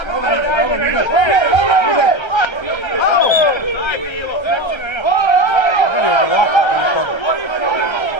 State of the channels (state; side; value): late; right; 1.3 ms